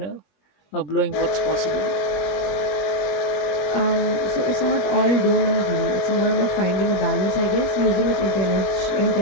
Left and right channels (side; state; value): right; late; 21 ms